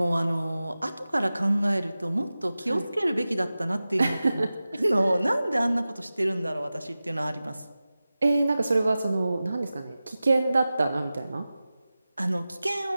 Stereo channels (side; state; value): both; inverted; correlation -0.96